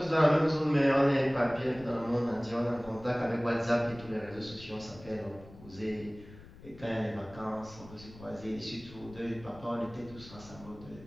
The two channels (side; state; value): left; noise; rumble, 19 dB below the sound